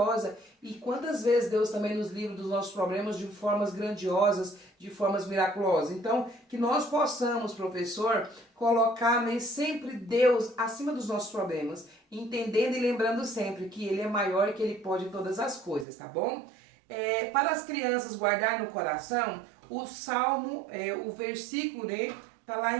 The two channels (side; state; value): left; drops out; at 15.9 s